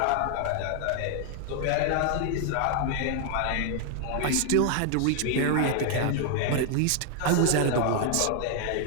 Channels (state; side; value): different; both; correlation 0.00